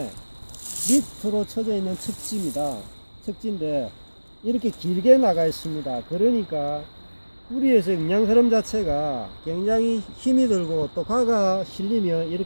밑으로 쳐져 있는 척지입니다. 척지인데 이렇게 길게 나가 있습니다. 그러니까 뿌리에서 영양 흐름 자체가 굉장히 힘이 들고, 또 가가 실리면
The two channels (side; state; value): both; inverted; correlation -1.00